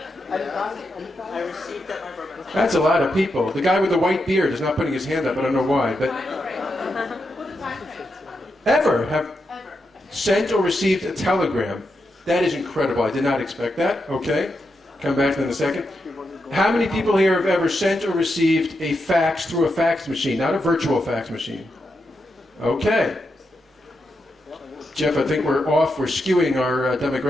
I received that. That's a lot of people. The guy with the white beard is not putting his hand up. I don't know why, but ever have sent or received a telegram? That is incredible. I did not expect that. Okay, come back to that in a second. How many people here have ever sent or received a fax through a fax machine, not a virtual fax machine? Okay. Jeff, I think we're off. We're skewing our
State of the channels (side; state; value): both; normal; correlation 0.85